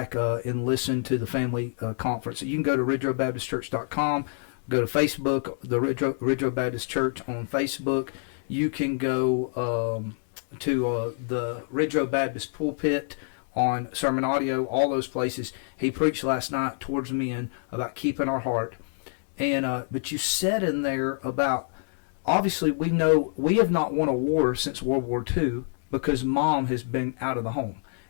and listen to the family conference. You can go to ridgeroadbaptistchurch.com, go to Facebook, the Ridge Road Baptist Church on Facebook. You can go to the Ridge Road Baptist pulpit on sermon audio, all those places. He preached last night towards men about keeping our heart. And but you said in there about, obviously we know we have not won a war since World War II because mom has been out of the home.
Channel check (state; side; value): silent; right; digital silence